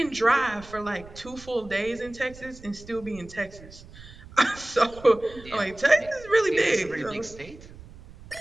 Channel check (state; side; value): noise; right; rumble, 19 dB below the sound